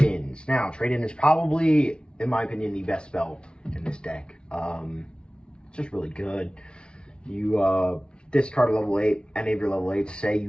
Now, trade-in is probably, in my opinion, the best spell in this deck. It's just really good. You discard a level 8, any of your level 8s, say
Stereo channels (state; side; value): late; right; 0.055 ms